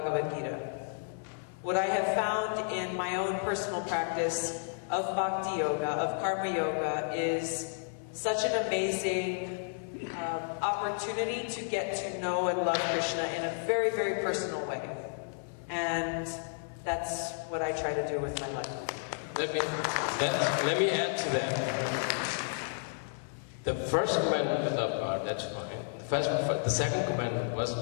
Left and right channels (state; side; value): silent; right; 56 dB below the other